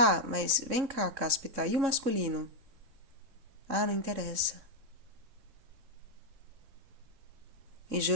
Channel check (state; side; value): late; left; 3.7 ms